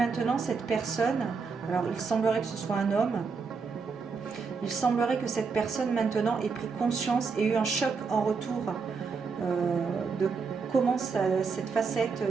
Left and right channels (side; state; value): left; quieter; 5.1 dB